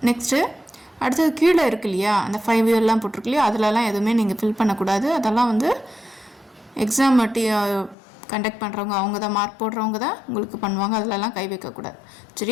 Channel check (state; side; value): drops out; right; at 8.0 s